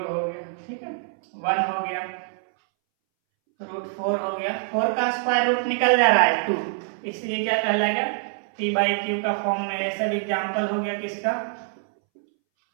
हो गया, ठीक है, 1 हो गया, √4 हो गया, 4 का स्क्वायर रूट निकल जा रहा है 2, इसलिए क्या कहलाएगा, p बाई क्यू का फॉर्म में। ये सब एग्जाम्पल हो गया किसका,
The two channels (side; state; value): left; silent; 62 dB below the other